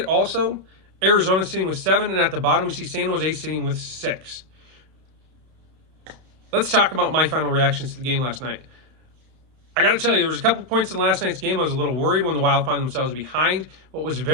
also. Arizona sitting with 7. And at the bottom, we see San Jose sitting with 6. Let's talk about my final reactions to the game last night. I got to tell you, there was a couple points in last night's game I was a little worried when the Wild found themselves behind, but was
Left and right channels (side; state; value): left; late; 32 ms